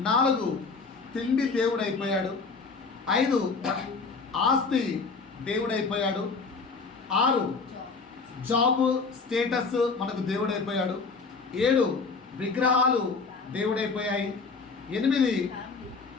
4 తిండి దేవుడైపోయాడు, 5 ఆస్తి దేవుడైపోయాడు, 6 జాబ్ స్టేటస్ మనకు దేవుడైపోయాడు, 7 విగ్రహాలు దేవుడైపోయాయి, 8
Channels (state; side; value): quieter; right; 4.5 dB